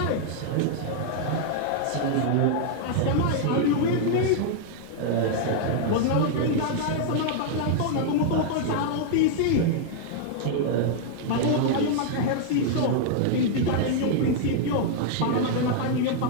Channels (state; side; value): different; both; correlation -0.01